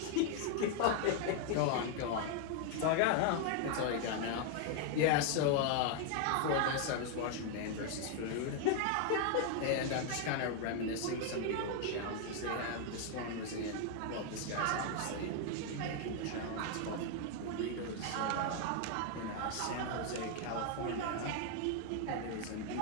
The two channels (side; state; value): both; different; correlation 0.00